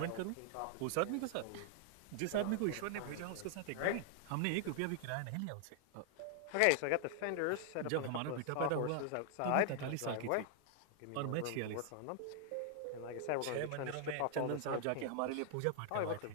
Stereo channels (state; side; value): different; both; correlation -0.01